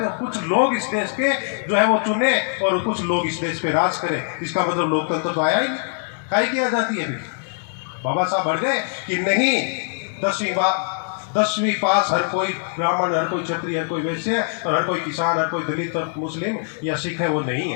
हो। कुछ लोग इस देश पे जो है वो चुने और कुछ लोग इस देश पे राज करें। इसका मतलब लोकतंत्र तो आया ही नहीं। काहे की आजादी है? बाबा साहब अड़ गए कि नहीं, 10वीं पास हर कोई ब्राह्मण, हर कोई क्षत्रिय, हर कोई वैश्य, और हर कोई किसान, हर कोई दलित और मुस्लिम या सिख है, वो नहीं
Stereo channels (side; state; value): right; silent; 63 dB below the other